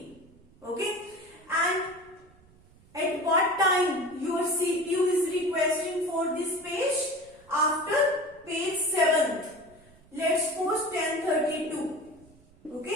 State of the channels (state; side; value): noise; right; rumble, 27 dB below the sound